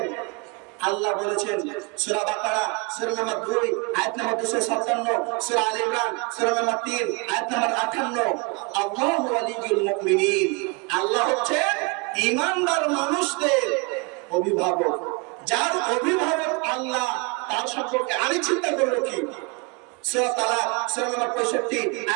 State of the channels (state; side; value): quieter; left; 30.3 dB